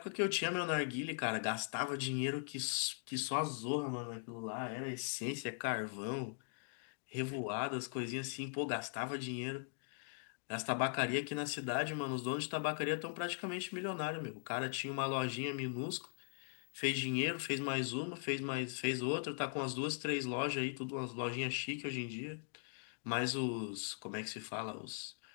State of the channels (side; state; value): right; silent; digital silence